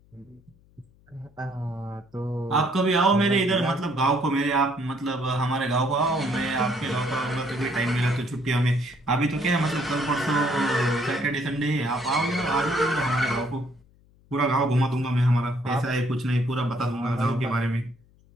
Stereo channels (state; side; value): noise; left; hum, 30 dB below the sound